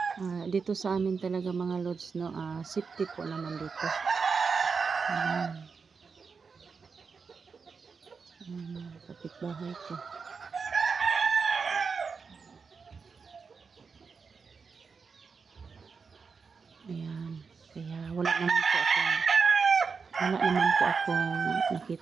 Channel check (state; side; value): quieter; left; 5.2 dB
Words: dito sa amin talaga mga lods, no, safety po naman dito. Kapitbahay ko. Ayan, kaya wala naman po akong